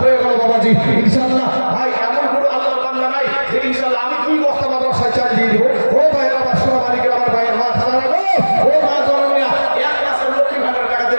হয়ে গেল বাবাজি ইনশাআল্লাহ। ভাই এমন কোনো আল্লাহর বান্দা নাই যে ইনশাআল্লাহ আমি 2 বস্তা মাদ্রাসায় চাল দিয়ে দিব। ও ভাইয়েরা আমার সোনা মালিকের আমার ভাইয়ের মা খালা গো, ও মা জনমিয়া, এক মাসের লক্ষ্মী ভান্ডার টাকা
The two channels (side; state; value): both; inverted; correlation -1.00